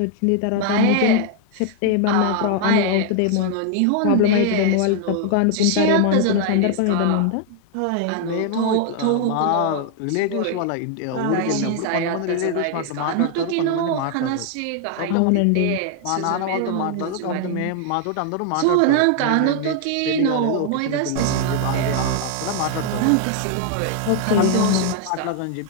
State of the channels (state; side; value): different; both; correlation 0.00